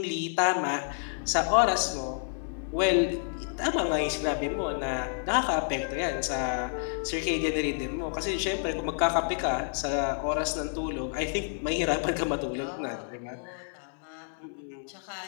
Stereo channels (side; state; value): right; silent; 58 dB below the other